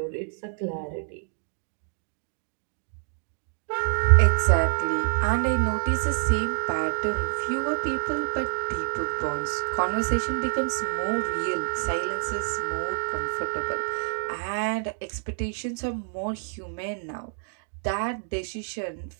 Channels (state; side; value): silent; left; digital silence